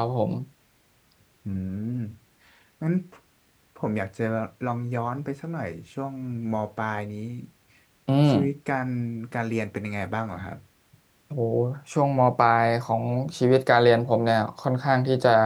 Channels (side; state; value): both; identical; correlation 1.00